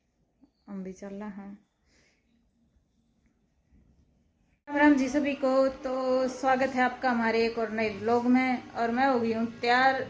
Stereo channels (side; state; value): both; identical; correlation 1.00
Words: हम भी चल रहा हैं। राम राम जी सभी को। तो स्वागत है आपका हमारे एक और नए ब्लॉग में, और मैं हो गई हूँ तैयार।